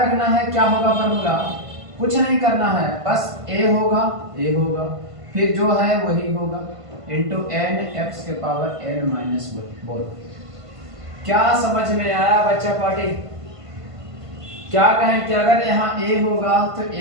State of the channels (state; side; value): late; left; 1.5 ms